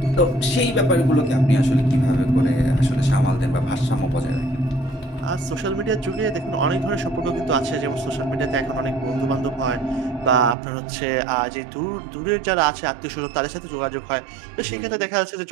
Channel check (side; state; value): left; drops out; at 10.6 s